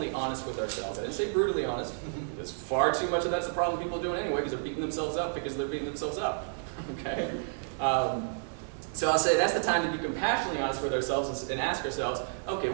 honest with ourselves. I didn't say brutally honest, because far too much of that's the problem people are doing anyway, because they're beating themselves up because they're beating themselves up. Okay? So I'll say that's the time to be compassionately honest with ourselves and ask ourselves, okay,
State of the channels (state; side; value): silent; left; digital silence